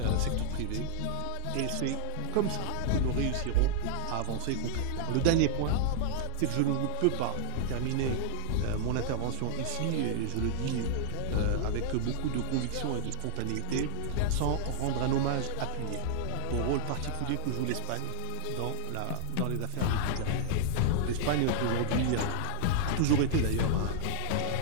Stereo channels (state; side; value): different; both; correlation 0.00